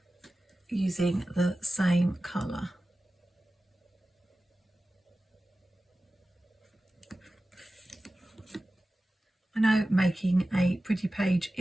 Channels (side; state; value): both; normal; correlation 0.95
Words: using the same colour. I know making a pretty page